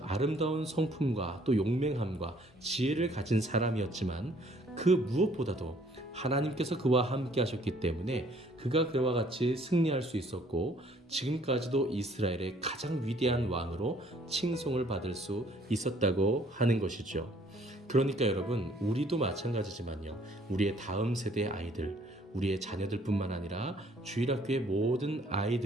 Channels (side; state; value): both; normal; correlation 0.60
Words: 아름다운 성품과 또 용맹함과 지혜를 가진 사람이었지만 그 무엇보다도 하나님께서 그와 함께 하셨기 때문에 그가 그와 같이 승리할 수 있었고 지금까지도 이스라엘의 가장 위대한 왕으로 칭송을 받을 수 있었다고 하는 것이죠. 그러니까 여러분, 우리도 마찬가지지만요, 우리의 다음 세대의 아이들, 우리의 자녀들뿐만 아니라 주일학교의 모든